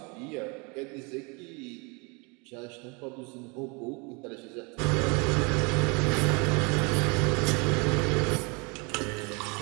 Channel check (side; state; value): left; quieter; 30.7 dB